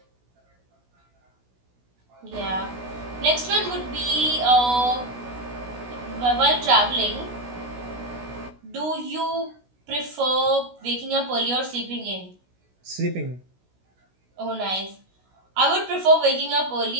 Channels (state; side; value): late; left; 16 ms